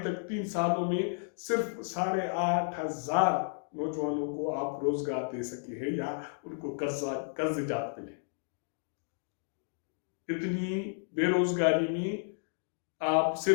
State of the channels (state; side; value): silent; right; digital silence